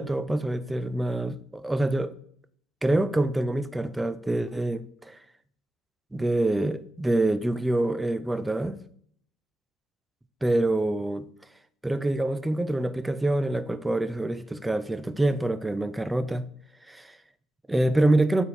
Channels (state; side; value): normal; both; correlation 0.94